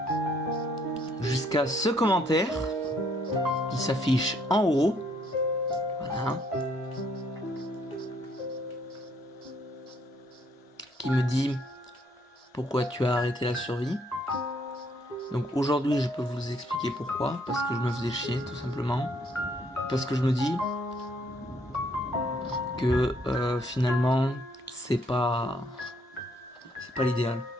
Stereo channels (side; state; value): both; normal; correlation 0.68